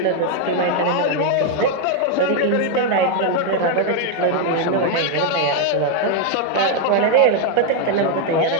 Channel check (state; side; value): different; both; correlation 0.00